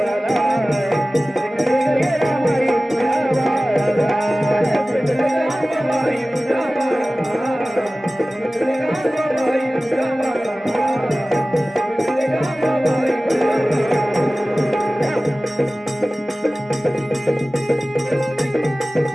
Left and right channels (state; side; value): normal; both; correlation 0.97